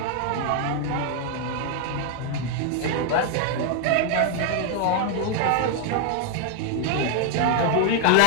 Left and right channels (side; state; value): both; different; correlation 0.01